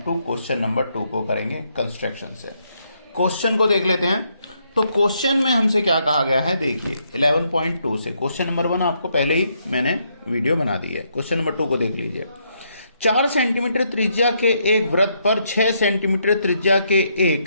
क्वेश्चन नंबर 2 को करेंगे कंस्ट्रक्शन से। क्वेश्चन को देख लेते हैं। तो क्वेश्चन में हमसे क्या कहा गया है, देखिए 11.2 से क्वेश्चन नंबर 1 आपको पहले ही मैंने वीडियो बना दी है। क्वेश्चन नंबर 2 को देख लीजिए। 4 सेंटीमीटर त्रिज्या के एक वृत्त पर 6 सेंटीमीटर त्रिज्या के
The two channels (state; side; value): inverted; both; correlation -0.75